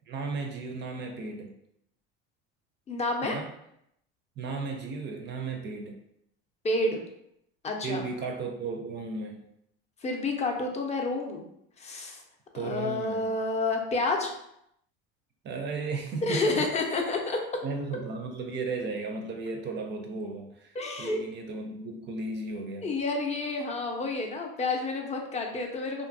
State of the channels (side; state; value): both; normal; correlation 0.29